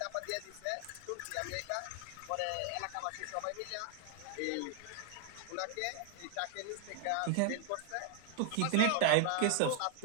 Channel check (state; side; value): different; both; correlation 0.00